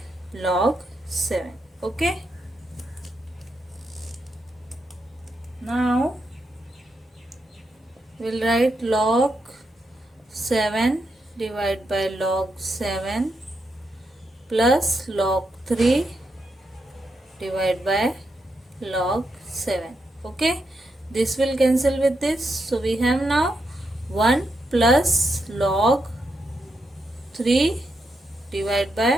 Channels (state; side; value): normal; both; correlation 0.83